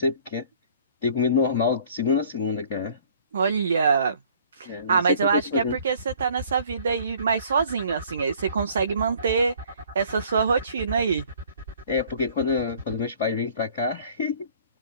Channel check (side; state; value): both; inverted; correlation -0.55